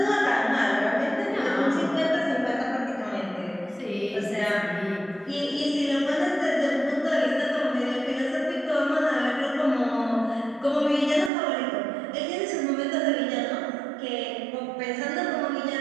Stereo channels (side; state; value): left; drops out; at 11.3 s